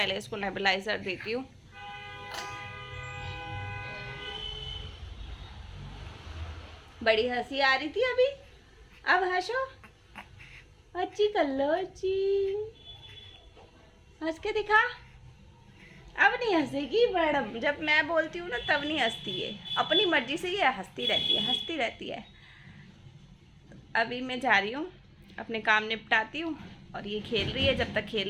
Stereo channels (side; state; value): both; identical; correlation 1.00